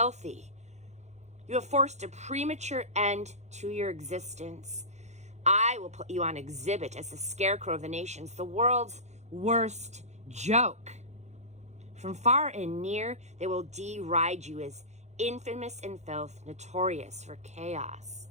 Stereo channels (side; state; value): left; late; 0.33 ms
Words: You have forced a premature end to your existence. I will put you on exhibit as the scarecrow of the nations, the world's worst joke. From far and near, they will deride you as infamous in filth, notorious for chaos.